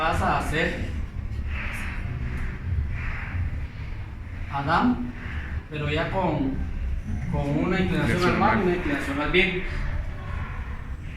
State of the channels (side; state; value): both; identical; correlation 1.00